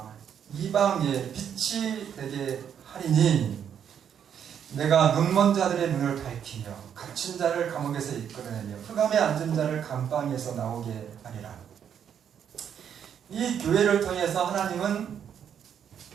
이방의 빛이 되게 하리니 내가 눈먼 자들의 눈을 밝히며 갇힌 자를 감옥에서 이끌어내며 흑암에 앉은 자를 감방에서 나오게 하리라. 이 교회를 통해서 하나님은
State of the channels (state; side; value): quieter; left; 8.5 dB